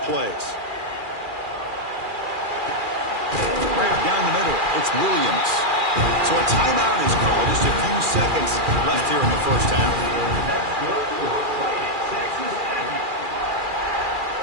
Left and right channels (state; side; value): late; left; 2.4 ms